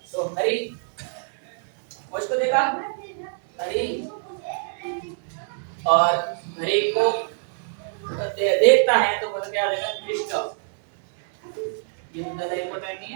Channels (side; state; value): left; silent; 62 dB below the other